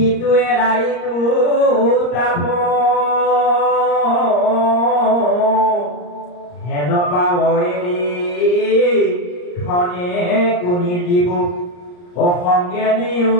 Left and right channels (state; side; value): late; right; 34 ms